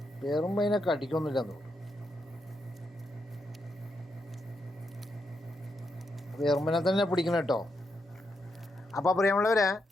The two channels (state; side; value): normal; both; correlation 0.82